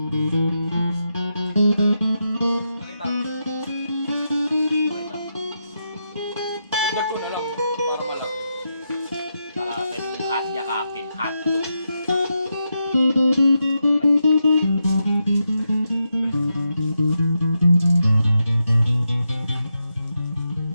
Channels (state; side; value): inverted; both; correlation -0.85